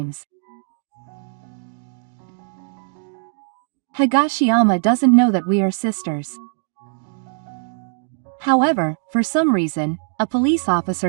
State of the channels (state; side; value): silent; left; digital silence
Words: Higashiyama doesn't know that we are sisters. However, for some reason, a police